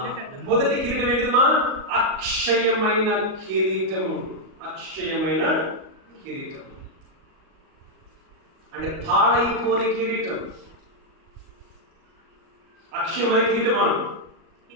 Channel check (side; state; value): left; late; 38 ms